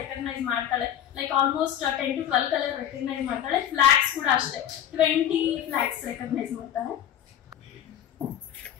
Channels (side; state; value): right; quieter; 10.5 dB